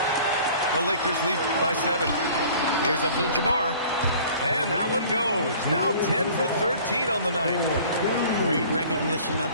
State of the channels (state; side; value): inverted; both; correlation -0.49